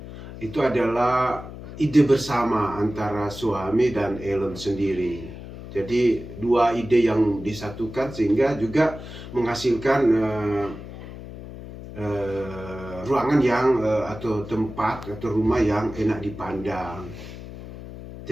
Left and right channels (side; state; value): left; noise; hum, 13 dB below the sound